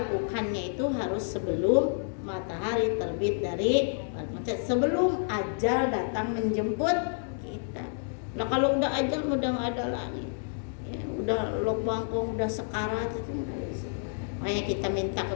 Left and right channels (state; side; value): silent; right; digital silence